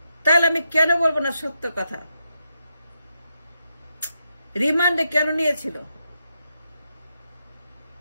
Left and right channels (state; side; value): inverted; both; correlation -0.83